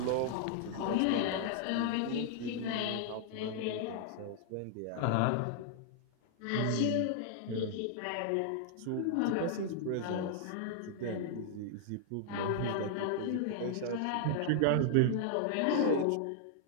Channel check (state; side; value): different; both; correlation -0.01